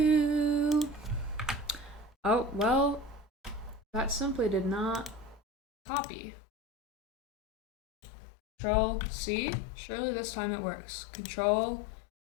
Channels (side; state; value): right; drops out; at 5.4 s